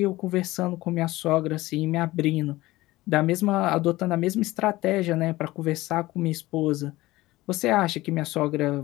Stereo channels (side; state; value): right; quieter; 18.4 dB